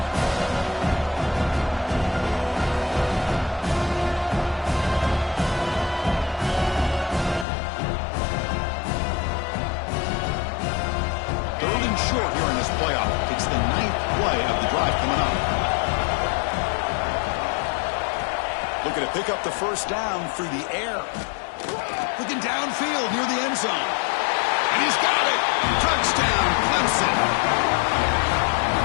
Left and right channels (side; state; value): right; drops out; at 7.5 s